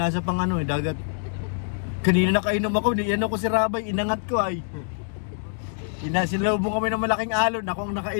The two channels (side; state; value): right; silent; digital silence